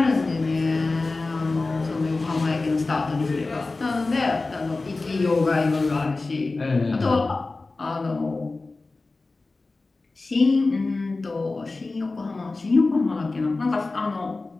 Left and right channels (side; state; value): right; quieter; 3.5 dB